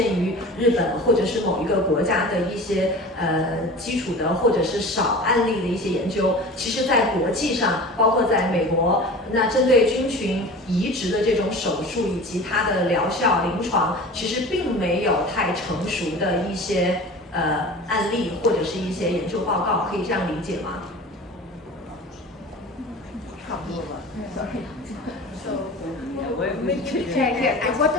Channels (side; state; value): both; normal; correlation 0.37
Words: 于日本或者是某一个国家的一些基础的或者是少案例的一些研究。其实，在国际上，包括在美国，那针对菌群移植的这种手术以及它的疗效、临床，其实并没有太成熟的一些案例或者是一些研究报告，可以这样理解吗？ Okay, why